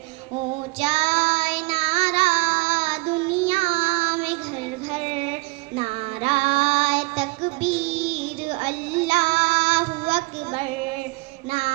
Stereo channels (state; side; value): quieter; left; 26.2 dB